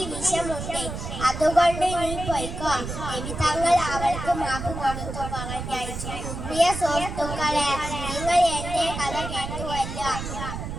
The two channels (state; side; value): noise; right; rumble, 7 dB below the sound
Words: വിഷമുണ്ട്, അതുകൊണ്ട് നീ പോയിക്കോ. നബി തങ്ങൾ അവൾക്ക് മാപ്പ് കൊടുത്തു പറഞ്ഞയച്ചു. പ്രിയ സുഹൃത്തുക്കളെ, നിങ്ങൾ എന്റെ കഥ കേട്ടുവല്ലോ.